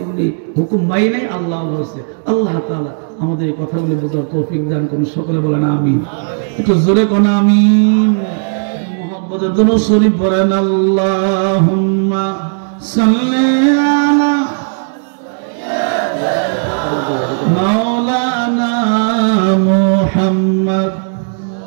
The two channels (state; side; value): silent; left; digital silence